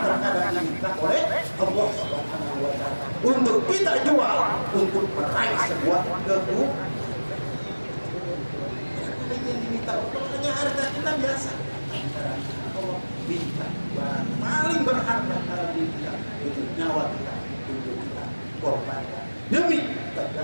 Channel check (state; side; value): inverted; both; correlation -1.00